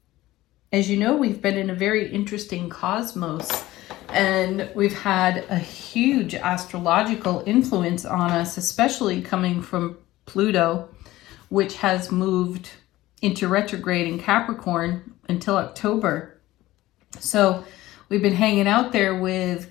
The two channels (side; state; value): right; quieter; 16.8 dB